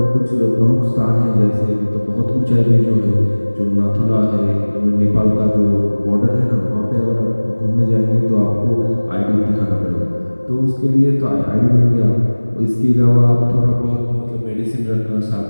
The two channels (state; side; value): inverted; both; correlation -1.00